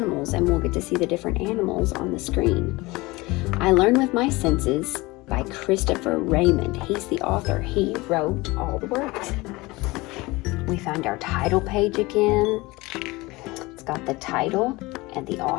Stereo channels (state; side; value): quieter; right; 22.2 dB